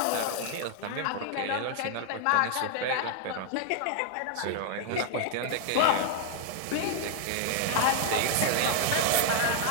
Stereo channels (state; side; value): different; both; correlation -0.01